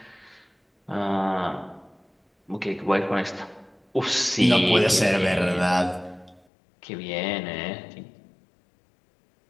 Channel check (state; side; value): drops out; right; at 6.4 s